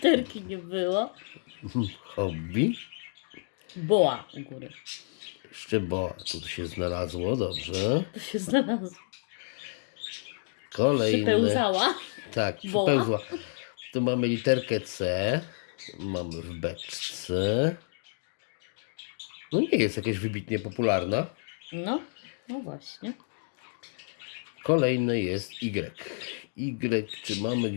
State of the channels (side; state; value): right; silent; digital silence